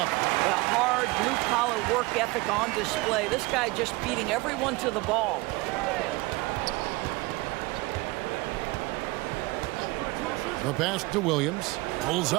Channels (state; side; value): quieter; left; 22.8 dB